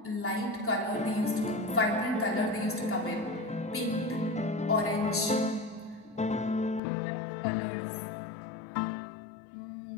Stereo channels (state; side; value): drops out; right; at 6.8 s